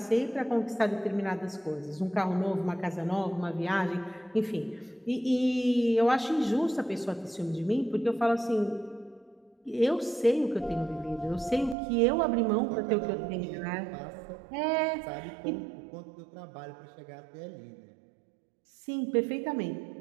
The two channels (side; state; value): left; drops out; at 11.8 s